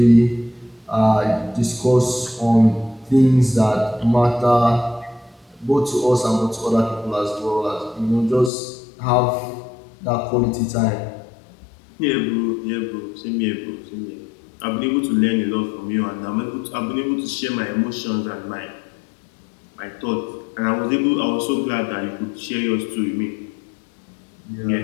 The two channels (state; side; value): drops out; right; at 8.5 s